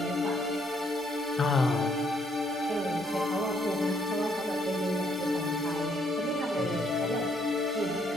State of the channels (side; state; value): both; normal; correlation 0.70